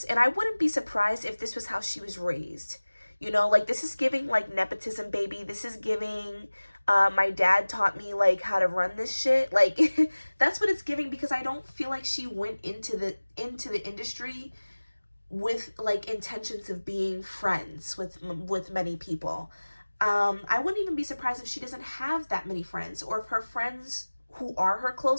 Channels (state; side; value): inverted; both; correlation -1.00